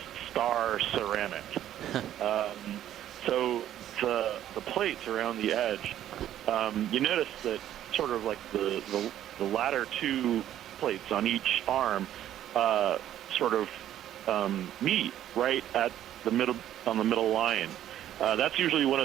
star ceramic. So the plates around the edge, you notice that sort of like the latter two plates on each arm sort of meet right at the middle on the middle line. That's usually one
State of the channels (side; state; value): left; quieter; 11.8 dB